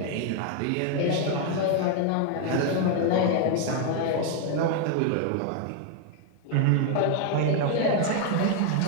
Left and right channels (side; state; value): both; different; correlation 0.01